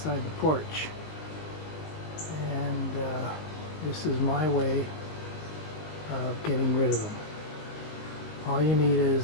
the porch, and this is my way of getting rid of them. All you need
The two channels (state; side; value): late; right; 20 ms